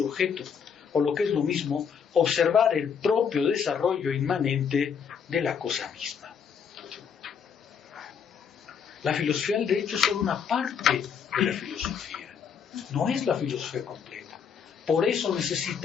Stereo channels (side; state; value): right; quieter; 7.0 dB